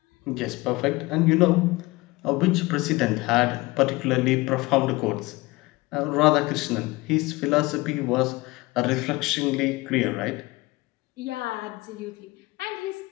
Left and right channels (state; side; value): quieter; right; 21.9 dB